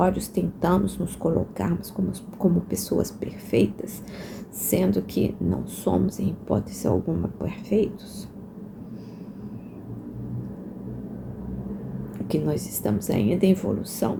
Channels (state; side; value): identical; both; correlation 1.00